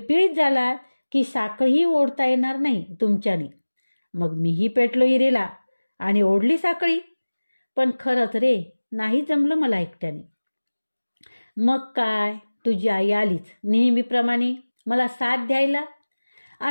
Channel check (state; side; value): inverted; both; correlation -1.00